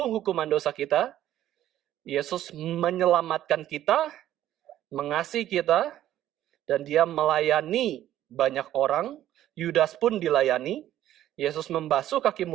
hukuman dosa kita, Yesus menyelamatkan kita, mengasihi kita, dan Dia melayani banyak orang. Yudas pun dilayani. Yesus membasuh kaki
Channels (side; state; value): left; quieter; 12.6 dB